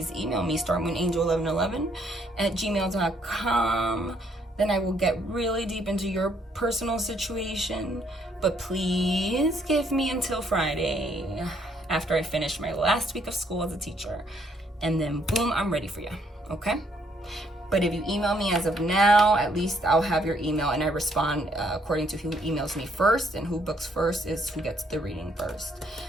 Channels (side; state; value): both; normal; correlation 0.69